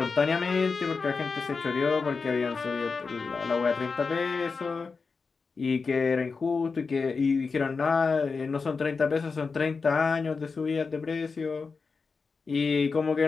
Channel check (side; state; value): right; quieter; 4.7 dB